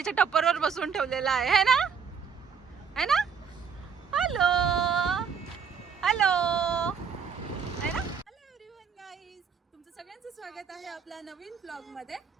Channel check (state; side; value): quieter; left; 6.6 dB